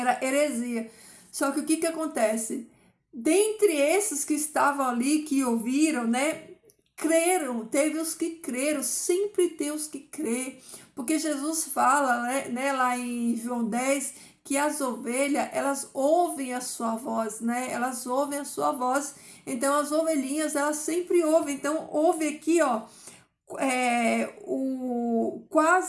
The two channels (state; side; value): identical; both; correlation 1.00